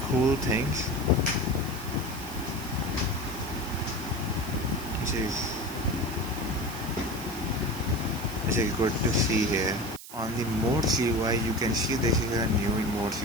cool thing, which is good to see here. On the modes UI, you can see this is a new modes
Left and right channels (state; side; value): noise; right; hiss, 14 dB below the sound